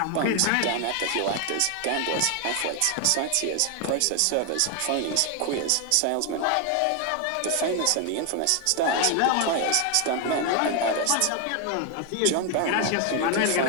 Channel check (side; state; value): both; different; correlation 0.01